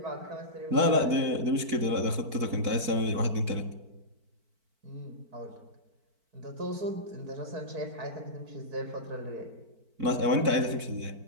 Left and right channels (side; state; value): left; late; 4.5 ms